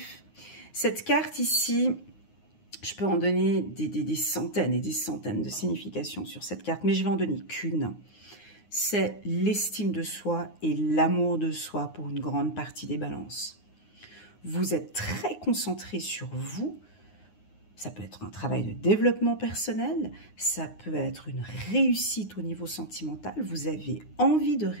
Cette carte ici, je peux en donner des centaines et des centaines de significations sur cette carte, mais je vais en donner qu'une. C'est l'estime de soi et l'amour de soi pour une grande partie des balances. Vous êtes très concentré sur vous. Ça peut être un travail de développement personnel, ça peut être une réussite au niveau sentimental. Vous avez envie de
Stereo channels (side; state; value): right; late; 9.6 ms